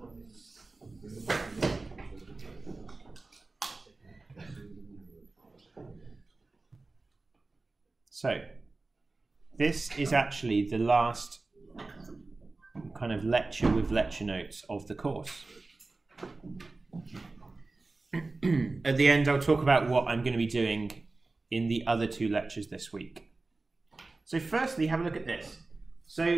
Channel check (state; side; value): quieter; left; 3.4 dB